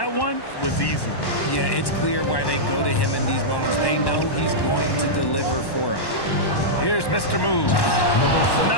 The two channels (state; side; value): late; right; 1.1 ms